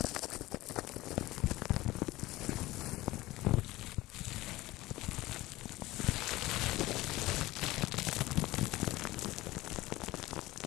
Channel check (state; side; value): quieter; right; 18.2 dB